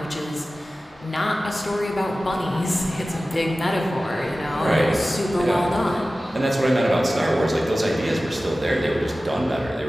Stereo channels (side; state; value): both; normal; correlation 0.96